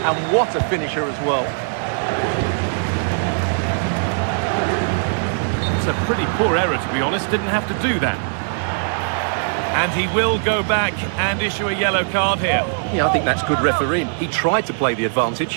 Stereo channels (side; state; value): left; silent; digital silence